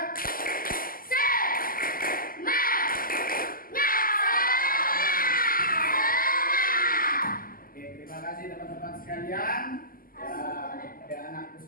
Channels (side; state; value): right; late; 0.42 ms